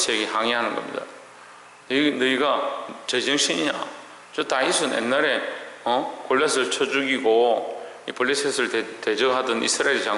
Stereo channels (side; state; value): both; identical; correlation 1.00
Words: 항의하는 겁니다. 너희가 제정신이냐? 저 다윗은 옛날에 골리앗을 쳐 죽이고 이 블레셋을 대적하던 이스라엘